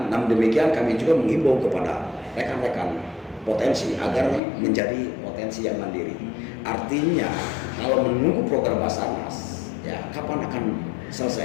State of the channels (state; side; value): drops out; right; at 4.4 s